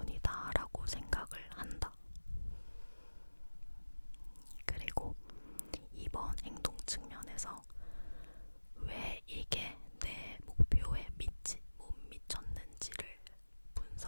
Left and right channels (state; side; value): inverted; both; correlation -1.00